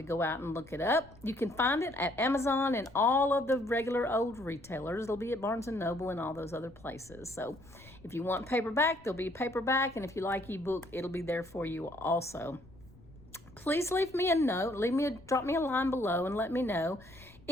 go out and look it up. You can find it at Amazon and all of the regular old retailers. It'll be at Barnes & Noble and all those other places. So if you want paperback, there'll be a paperback. And if you like ebook, it'll be there for you also. Please leave me a note. Drop me a line below and let me know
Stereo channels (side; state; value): left; noise; rumble, 24 dB below the sound